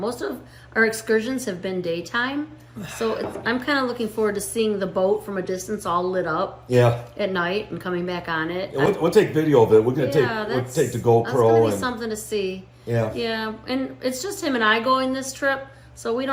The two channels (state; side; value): identical; both; correlation 1.00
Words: of our excursions have been daytime. So I'm kind of looking forward to seeing the boat from a distance all lit up at night and coming back on it. Yeah, we'll take video of it. We're going to take the GoPro. That's going to be something to see. Yeah. And it's just him and I going this trip. So we